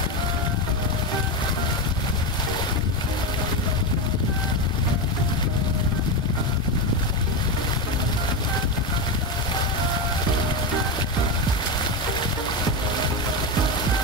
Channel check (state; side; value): normal; both; correlation 0.13